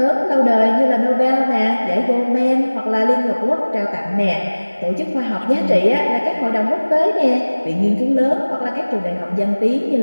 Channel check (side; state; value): both; inverted; correlation -1.00